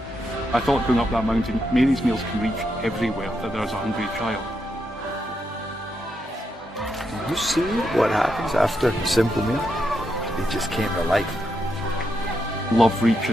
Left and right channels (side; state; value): both; normal; correlation 0.82